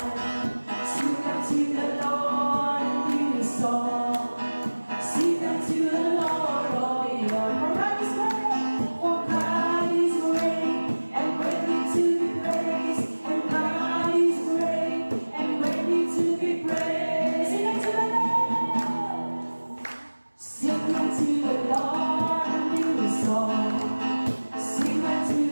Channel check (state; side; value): inverted; both; correlation -1.00